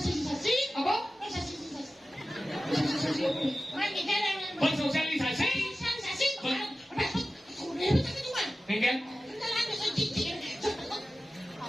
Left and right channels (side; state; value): both; normal; correlation 0.95